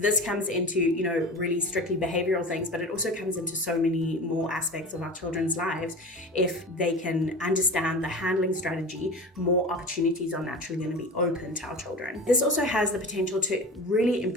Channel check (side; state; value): both; normal; correlation 0.32